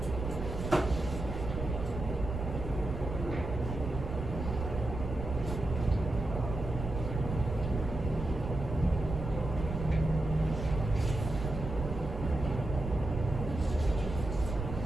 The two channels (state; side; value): noise; right; rumble, 5 dB below the sound